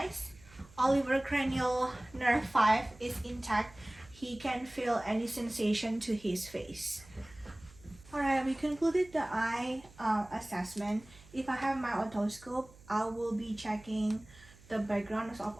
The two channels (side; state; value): right; noise; hum, 23 dB below the sound